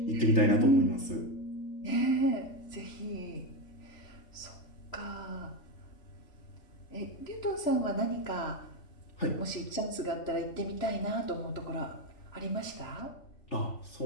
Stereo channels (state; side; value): late; right; 3.0 ms